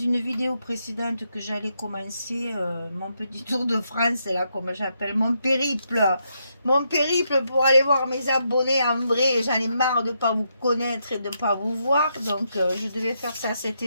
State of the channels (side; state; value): both; inverted; correlation -0.80